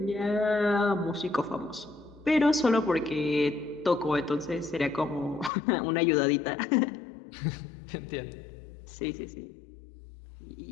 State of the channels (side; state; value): right; drops out; at 5.5 s